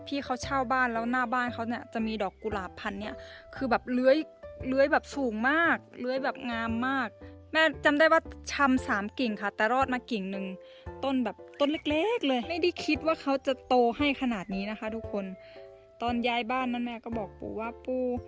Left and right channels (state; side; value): identical; both; correlation 1.00